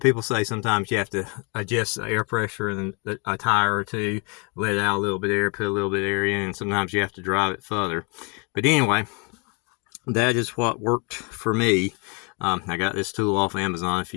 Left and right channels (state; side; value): quieter; right; 33.6 dB